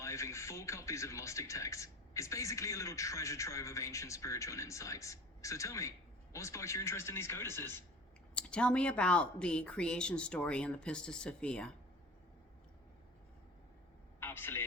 full copies of Gnostic texts. It's basically a little treasure trove of ancient spiritual insights. So tell me, what sparked your interest in these codices? Tell me about the creation story in the Pistis Sophia.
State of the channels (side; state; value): both; normal; correlation 0.39